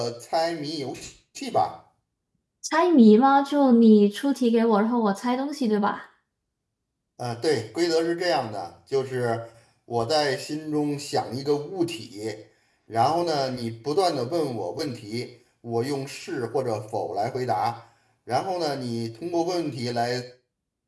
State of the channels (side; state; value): both; identical; correlation 1.00